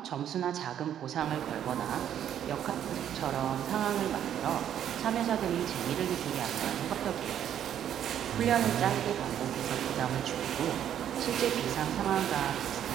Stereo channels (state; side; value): quieter; left; 10.0 dB